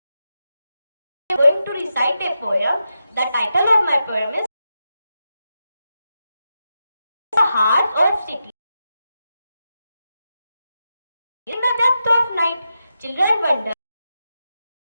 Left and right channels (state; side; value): inverted; both; correlation -0.87